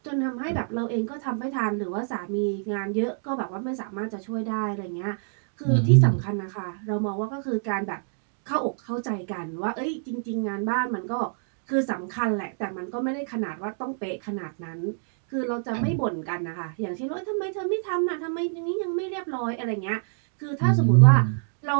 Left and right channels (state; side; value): silent; left; digital silence